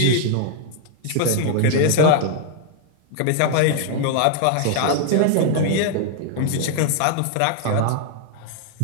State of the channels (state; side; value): different; both; correlation 0.00